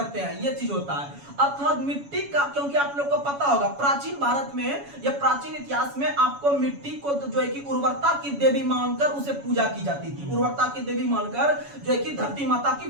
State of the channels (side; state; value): left; late; 7.1 ms